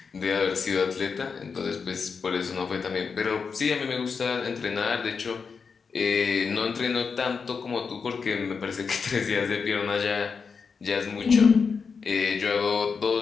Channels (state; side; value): quieter; right; 5.5 dB